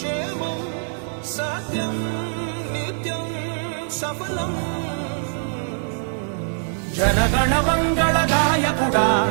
సత్యం నిత్యం సఫలం. జనగణ మంగళ నాయకుడా,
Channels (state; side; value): silent; left; digital silence